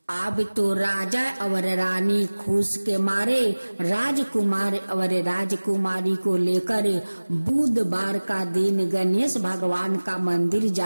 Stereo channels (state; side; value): inverted; both; correlation -1.00